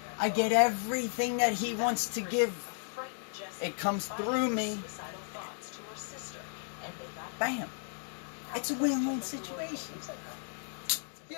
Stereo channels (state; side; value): silent; right; digital silence